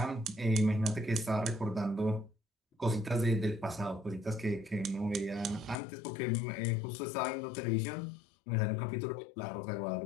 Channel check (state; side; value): drops out; right; at 5.8 s